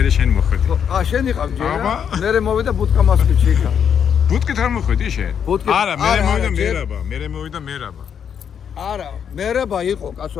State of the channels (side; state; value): right; quieter; 7.9 dB